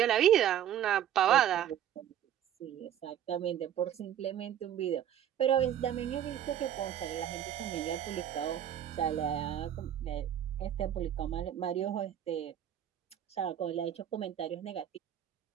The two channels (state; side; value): quieter; left; 10.4 dB